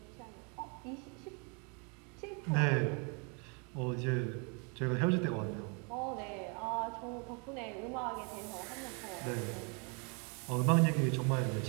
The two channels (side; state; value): left; quieter; 35.1 dB